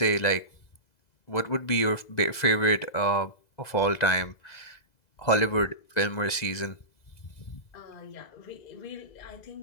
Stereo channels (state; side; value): late; right; 2.0 ms